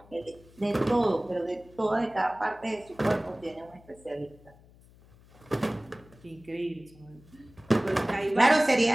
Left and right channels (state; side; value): noise; left; hum, 25 dB below the sound